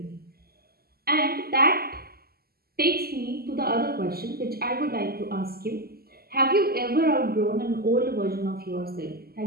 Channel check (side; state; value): left; late; 0.45 ms